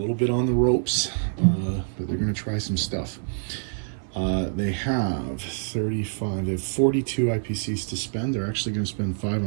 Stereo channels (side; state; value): left; silent; digital silence